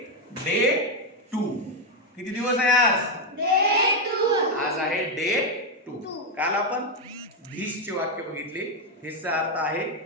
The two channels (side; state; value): both; normal; correlation 0.04